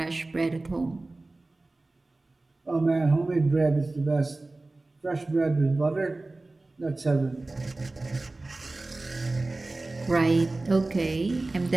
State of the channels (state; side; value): quieter; left; 3.1 dB